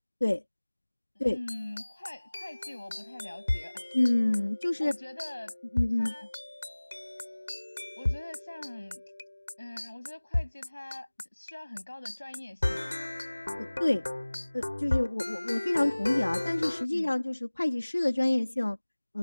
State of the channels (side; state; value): both; inverted; correlation -1.00